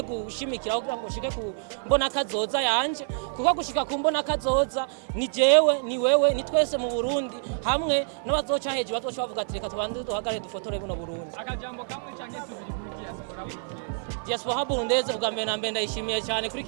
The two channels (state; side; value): silent; left; digital silence